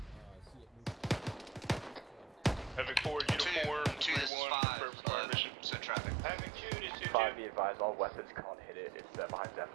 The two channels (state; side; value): drops out; left; at 4.3 s